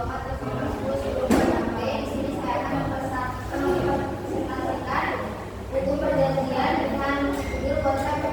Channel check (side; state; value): both; identical; correlation 1.00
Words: Di sini saya akan mempresentasikan buku perjanjian dengan judul kontrak